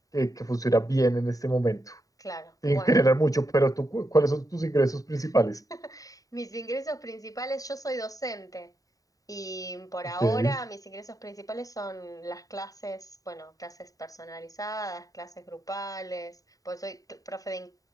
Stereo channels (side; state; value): right; late; 0.17 ms